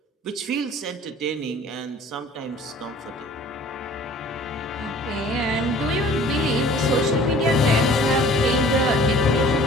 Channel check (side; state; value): both; normal; correlation 0.49